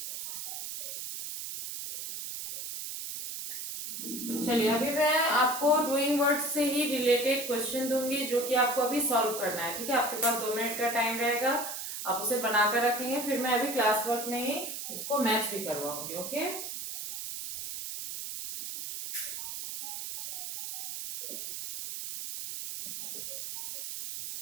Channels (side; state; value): right; noise; hiss, 6 dB below the sound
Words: चलिए, अभी मैं आपको डूइंग वर्ड से ही रिलेटेड क्वेश्चन दूंगी जो कि आपको अभी सॉल्व करना है, ठीक है। आपके पास 2 मिनट का टाइम रहेगा, आप उसे बनाकर रखेंगे, फिर मैं अभी क्लास वर्क में ही उसको मैच भी करवाऊंगी, ओके।